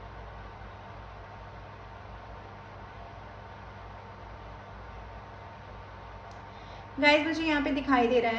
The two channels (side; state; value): both; identical; correlation 1.00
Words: गाइस, मुझे यहाँ पे दिखाई दे रहा